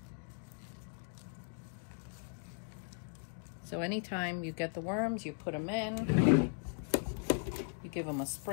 So anytime you get the worms, you put them in, you give them a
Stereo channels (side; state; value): right; silent; 53 dB below the other